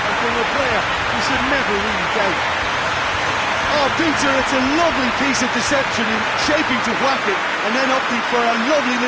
from a player you should never really doubt. Oh, Peter, it's a lovely piece of deception in shaping to whack it, and then opting for a lovely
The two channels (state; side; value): identical; both; correlation 1.00